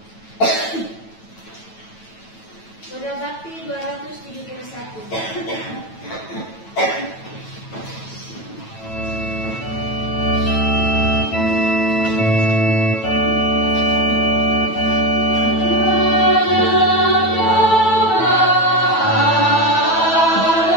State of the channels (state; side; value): late; right; 9.1 ms